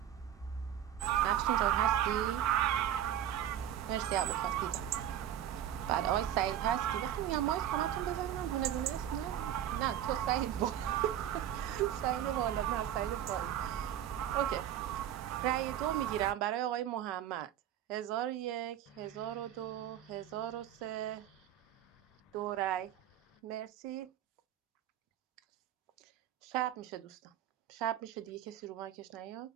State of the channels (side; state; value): left; quieter; 11.0 dB